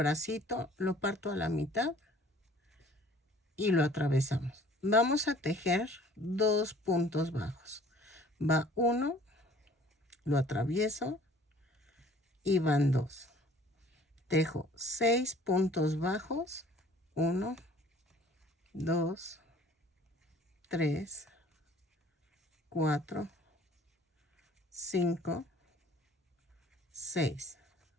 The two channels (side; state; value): both; normal; correlation 0.52